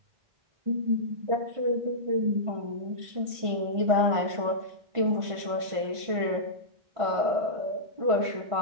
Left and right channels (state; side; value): late; left; 1.5 ms